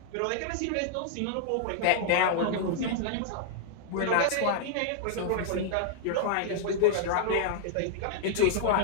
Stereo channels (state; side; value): different; both; correlation -0.01